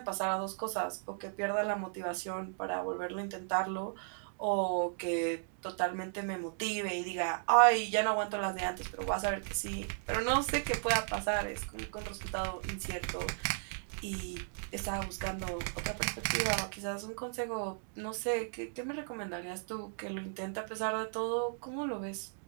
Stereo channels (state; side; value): silent; left; digital silence